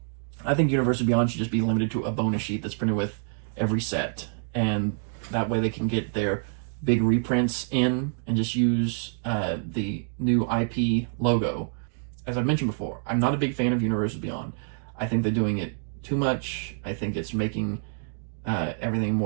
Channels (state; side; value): silent; left; 60 dB below the other